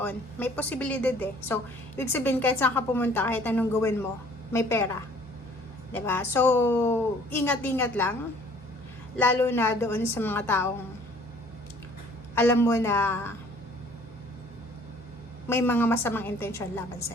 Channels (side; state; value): both; normal; correlation 0.55